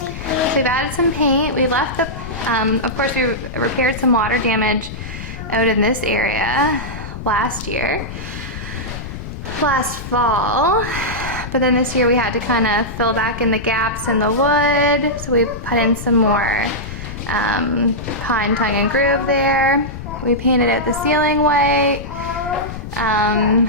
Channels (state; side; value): noise; left; rumble, 9 dB below the sound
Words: we've added some paint. We left the, of course we repaired some water damage out in this area last fall. But then this year we had to kind of fill back in the gaps in the wood. So we put in some more pine tongue and groove there. We painted out the ceiling white.